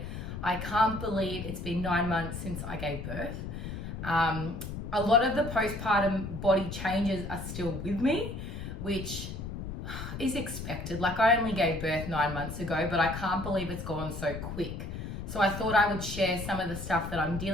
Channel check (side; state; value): left; noise; rumble, 7 dB below the sound